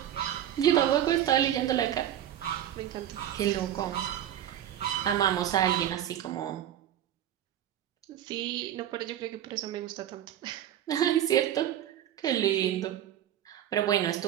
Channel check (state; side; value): quieter; left; 11.2 dB